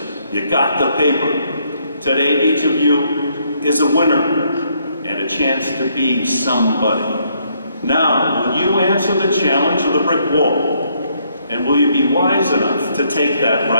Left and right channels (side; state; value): both; inverted; correlation -0.71